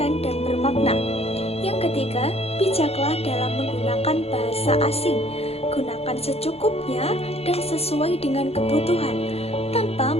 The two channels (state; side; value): late; right; 0.29 ms